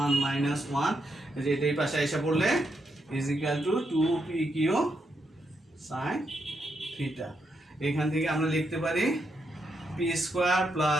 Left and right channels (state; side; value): normal; both; correlation 0.81